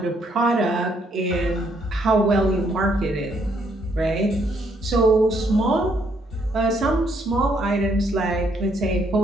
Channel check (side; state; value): both; normal; correlation 0.71